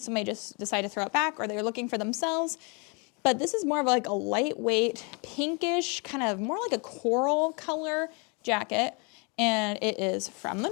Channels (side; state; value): right; quieter; 33.1 dB